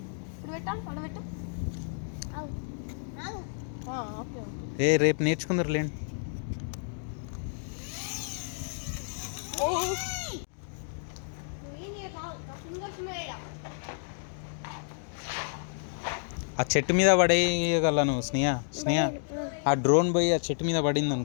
ఇప్పుడు పెట్టాలి పడబెట్టు రేపు నేర్చుకుందరు లేండి ఆ చెట్టు మీద పడేయగలను స్నేహ ఆ డ్రోన్ పోయి ఆ చెట్టు మీద పడింది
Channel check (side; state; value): right; silent; digital silence